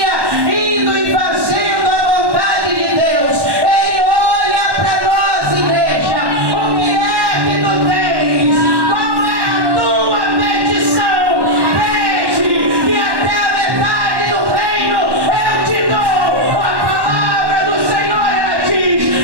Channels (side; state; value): left; late; 1.1 ms